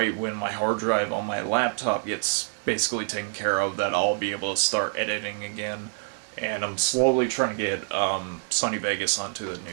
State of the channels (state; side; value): silent; left; 61 dB below the other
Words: when my hard drive on my laptop gets basically taken care of, that I'll be able to start editing again. And I'm slowly trying to get Sony Vegas onto the